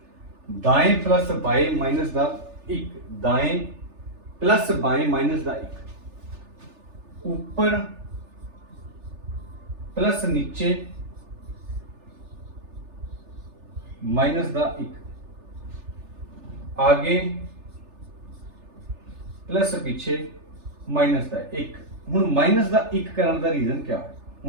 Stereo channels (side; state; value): left; late; 3.3 ms